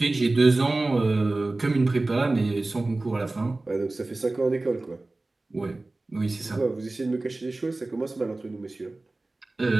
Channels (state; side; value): quieter; left; 3.0 dB